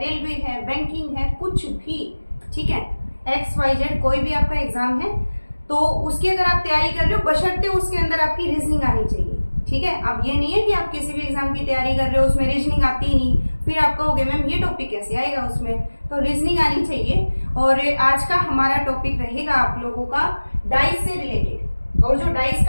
है, बैंकिंग है, कुछ भी, ठीक है, XYZ कोई भी आपका एग्जाम है तो उसकी अगर आप तैयारी कर रहे हो बशर्ते उसके अंदर आपकी रीजनिंग आनी चाहिए। ठीक है, अब ये नहीं है कि आप किसी भी एग्जाम की तैयारी कर रहे हो उसमें रीजनिंग आती ही नहीं, फिर आप कहोगे मैम ये टॉपिक कैसे आएगा उसमें, तो रीजनिंग आनी चाहिए। और आज का हमारा टॉपिक रहेगा आप लोगों का डाइस से रिलेटेड। और जो डाइस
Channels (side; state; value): both; inverted; correlation -1.00